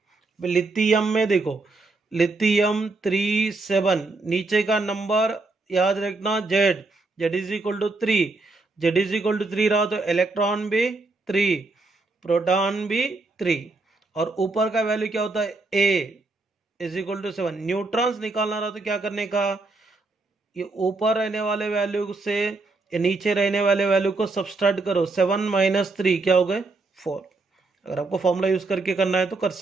लिथियम में देखो, लिथियम 37, नीचे का नंबर याद रखना Z, Z is equal to 3, Z is equal to 3 रहा तो इलेक्ट्रॉन भी 3, प्रोटॉन भी 3, और ऊपर का वैल्यू क्या होता है, ए इज इक्वल टू 7। न्यूट्रॉन्स निकालना रहा तो क्या करने का, ये ऊपर रहने वाले वैल्यू से ये नीचे रहने वाले वैल्यू को सबट्रैक्ट करो, 7 माइनस 3 क्या हो गए, 4। अगर आपको फॉर्मूला यूज करके करना है तो कर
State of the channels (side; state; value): left; quieter; 3.4 dB